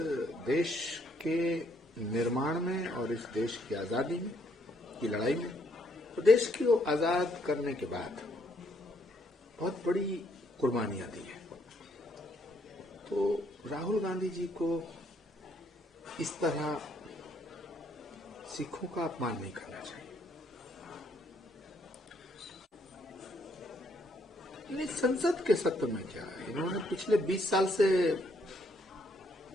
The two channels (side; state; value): both; normal; correlation 0.70